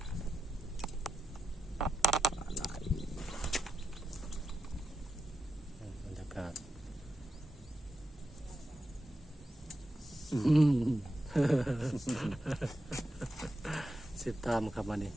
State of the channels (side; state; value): both; normal; correlation 0.88